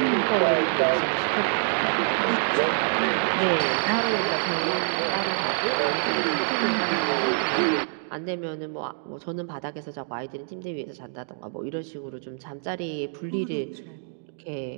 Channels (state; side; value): silent; left; digital silence